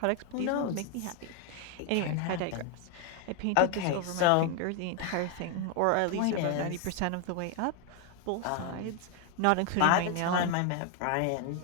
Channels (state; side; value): different; both; correlation 0.01